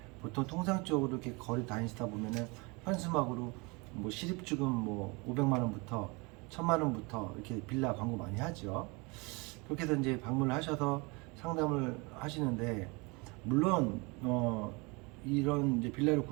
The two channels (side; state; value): left; quieter; 27.9 dB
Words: 보통 통상적으로 이렇게 거리 다니시다 보면은 현수막으로 뭐 실입주금 뭐 500만 원부터 1000만 원부터 이렇게 빌라 광고 많이 하죠. 그렇게 해서 이제 방문을 하셔서 상담을 하시는데, 물론 이런 이제 빌라를